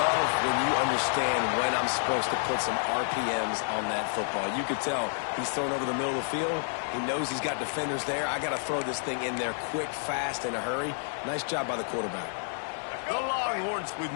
when you understand when I'm supposed to put some RPMs on that football. You could tell he's thrown over the middle of the field. He knows he's got defenders there. I got to throw this thing in there quick, fast, in a hurry. Nice job by the quarterback. The Longhorns with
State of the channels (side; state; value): right; silent; digital silence